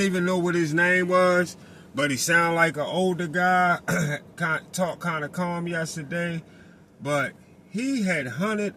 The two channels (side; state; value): both; identical; correlation 1.00